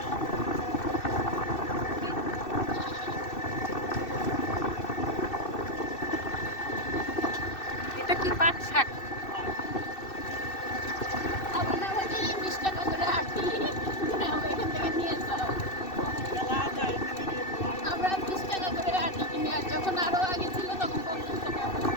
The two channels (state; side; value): late; right; 2.6 ms